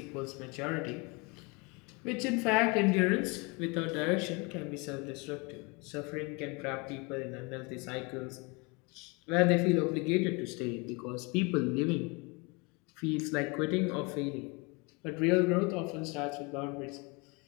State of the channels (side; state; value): right; quieter; 29.1 dB